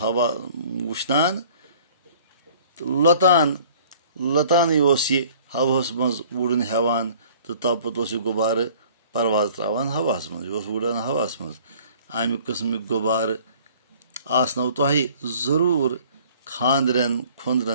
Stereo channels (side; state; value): both; inverted; correlation -0.52